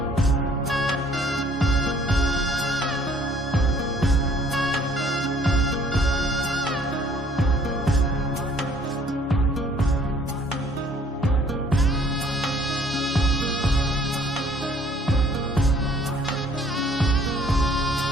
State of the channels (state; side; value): normal; both; correlation 0.59